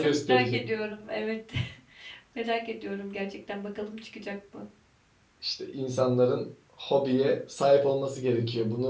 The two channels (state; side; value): identical; both; correlation 1.00